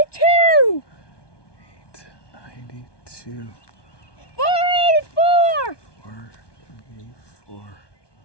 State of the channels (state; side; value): late; right; 1.2 ms